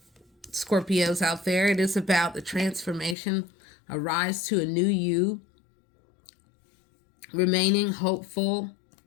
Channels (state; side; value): drops out; right; at 3.2 s